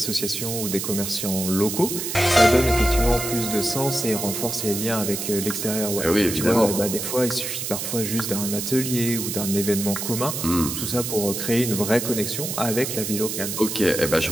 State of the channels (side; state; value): right; noise; hiss, 4 dB below the sound